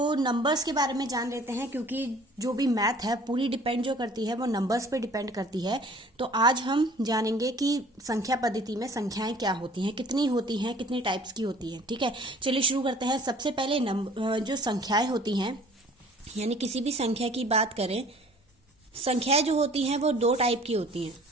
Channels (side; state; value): both; normal; correlation 0.51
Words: नंबर्स के बारे में जान लेते हैं, क्योंकि जो भी मैथ है पूरी डिपेंड जो करती है वो नंबर्स पे डिपेंड करती है। तो आज हम जानेंगे कि संख्या पद्धति में संख्याएं क्या होती हैं, कितनी होती हैं, कितनी टाइप्स की होती हैं। ठीक है, चलिए शुरू करते हैं। सबसे पहले जो संख्याएं होती हैं, यानी किसी भी संख्या की बात करें, संख्याएं जो होती हैं वो दो टाइप की होती हैं।